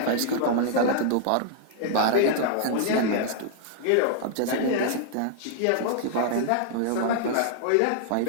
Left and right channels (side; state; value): both; different; correlation -0.01